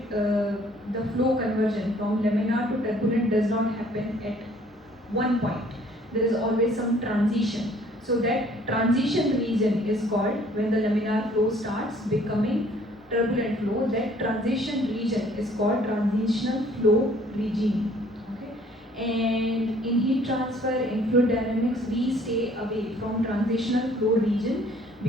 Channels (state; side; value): normal; both; correlation 0.58